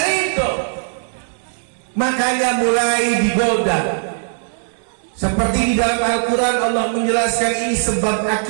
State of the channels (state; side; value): silent; left; digital silence